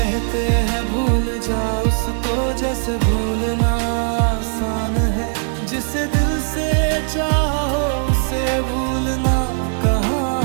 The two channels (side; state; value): left; silent; digital silence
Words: हैं भूल जा उसको, जैसे भूलना आसान है, जिसे दिल से चाहो उसे भूलना कहाँ